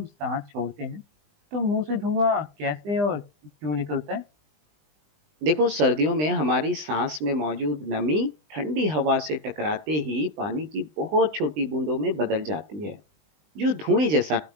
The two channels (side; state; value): left; late; 20 ms